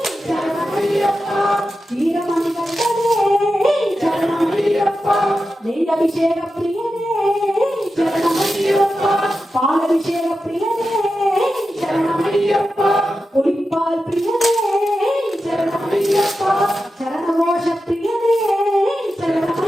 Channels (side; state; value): both; normal; correlation 0.91